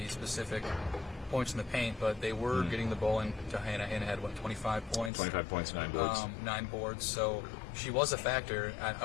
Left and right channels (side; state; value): right; drops out; at 5.1 s